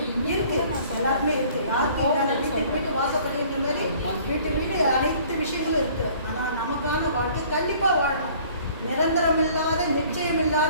எல்லாருமே இருக்குது. யாருக்கு இல்லாத வீட்டுக்கு வீட்டு வாசப்படின்ற மாதிரி வீட்டு அனைத்து விஷயங்களும் இருக்குது. ஆனால் நமக்கான வாழ்க்கை கண்டிப்பாக வாழணும். நிரந்தரம் இல்லாத நிச்சயம்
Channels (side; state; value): both; inverted; correlation -0.54